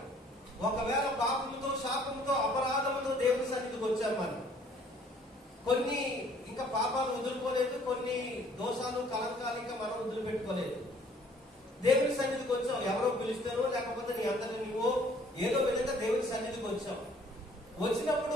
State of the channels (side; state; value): both; normal; correlation 0.58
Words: ఒకవేళ పాపముతో, శాపముతో, అపరాధముతో దేవుని సన్నిధికి వచ్చాం మనం, కొన్ని ఇంకా పాపాలు వదులుకోలేదు, కొన్ని దోషాలు, కలంకాలు ఇంకా మనం వదిలిపెట్టుకోలేదు. దేవుని సన్నిధికి వచ్చాం, ఎవరో పిలుస్తారో లేకపోతే నీ అంతటి నువ్వో ఏదో విధంగా దేవుని సన్నిధికి వచ్చాం. వచ్చినప్పుడు